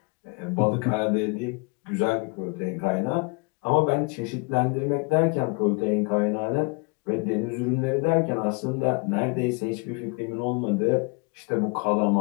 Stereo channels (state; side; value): quieter; right; 31.3 dB